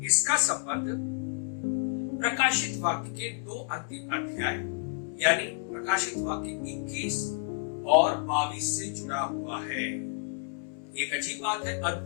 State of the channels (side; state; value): right; silent; 58 dB below the other